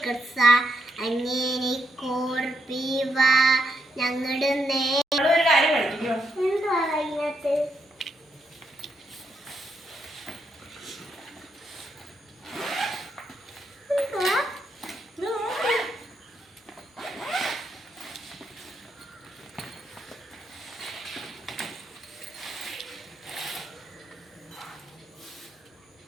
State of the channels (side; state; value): both; normal; correlation 0.79